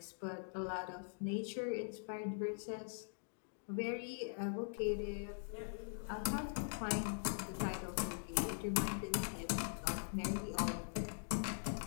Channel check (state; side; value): silent; right; digital silence